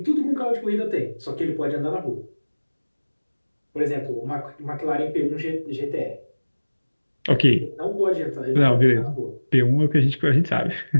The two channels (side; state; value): both; inverted; correlation -1.00